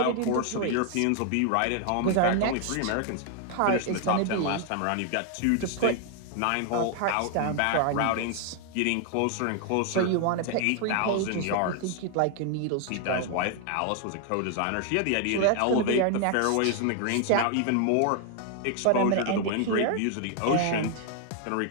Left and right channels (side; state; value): both; different; correlation 0.00